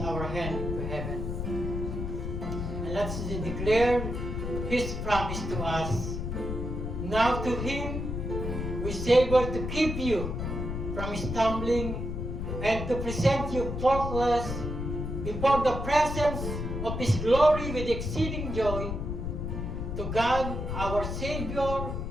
hand to heaven. And let's declare His promise to us. Now to Him who is able to keep you from stumbling and to present you faultless before the presence of His glory with exceeding joy. To God, our Savior,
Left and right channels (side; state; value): left; noise; rumble, 4 dB below the sound